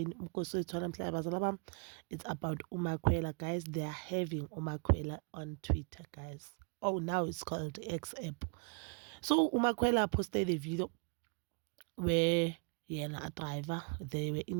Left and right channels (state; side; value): quieter; left; 37.0 dB